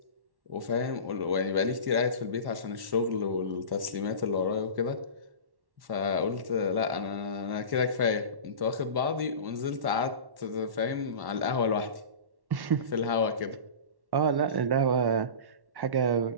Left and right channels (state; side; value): late; left; 1.1 ms